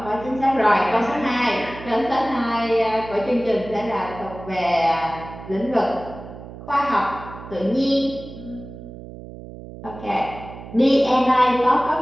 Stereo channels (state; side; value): noise; right; hum, 14 dB below the sound